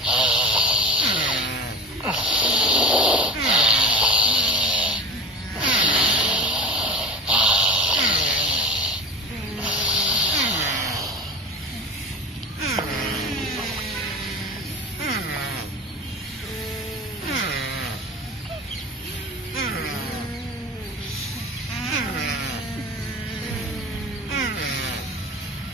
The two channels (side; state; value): both; normal; correlation 0.34